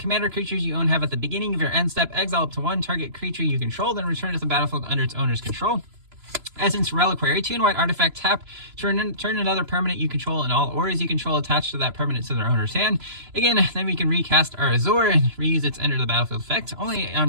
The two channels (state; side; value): late; left; 3.0 ms